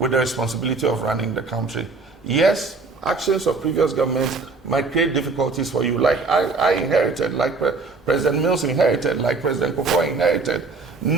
the responsibility of running the country. Yes, actions of previous governments might create difficulties for you, like I inherited, like President Mills inherited, like President Kufuor inherited.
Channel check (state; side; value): quieter; left; 4.0 dB